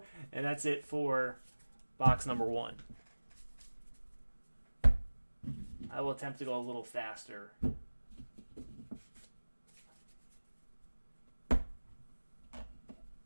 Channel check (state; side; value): inverted; both; correlation -1.00